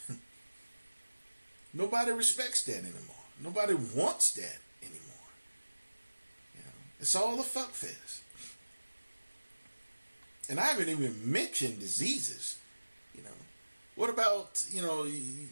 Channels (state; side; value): inverted; both; correlation -1.00